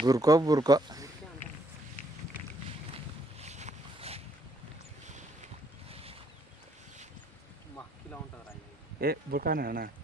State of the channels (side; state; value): both; normal; correlation 0.68